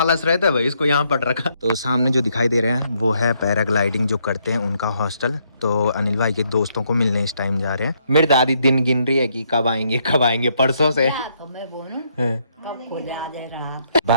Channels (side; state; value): both; inverted; correlation -0.73